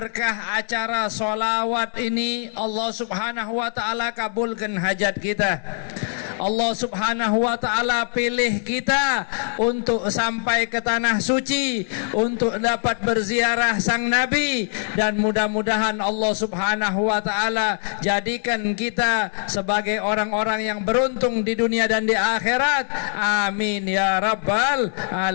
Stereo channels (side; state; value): right; silent; digital silence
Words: acara solawat ini Allah subhanahu wa ta'ala kabulkan hajat kita. Allah Subhanahu wa taala pilih kita untuk sampai ke tanah suci, untuk dapat berziarah sang Nabi, dan mudah-mudahan Allah Subhanahu wa taala jadikan kita sebagai orang-orang yang beruntung di dunia dan di akhirat. Amin ya rabbal